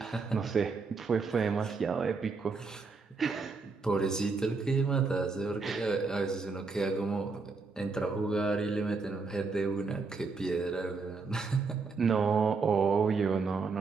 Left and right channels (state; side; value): quieter; left; 4.4 dB